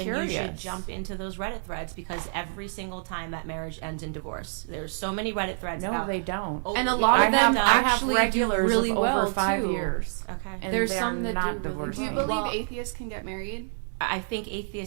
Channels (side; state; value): left; silent; digital silence